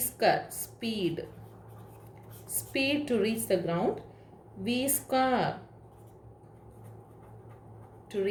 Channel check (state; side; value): identical; both; correlation 1.00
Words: speed to reach the ground, v square to